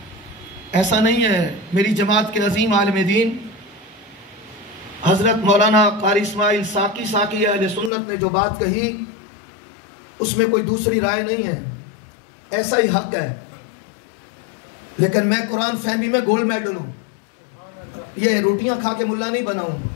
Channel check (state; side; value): drops out; right; at 7.9 s